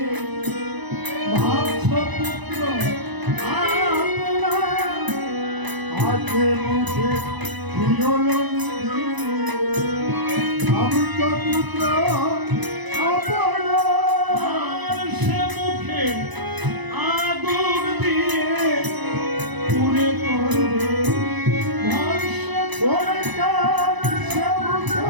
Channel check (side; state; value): left; late; 1.0 ms